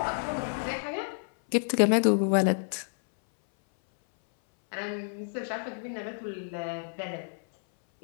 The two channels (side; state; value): right; silent; 58 dB below the other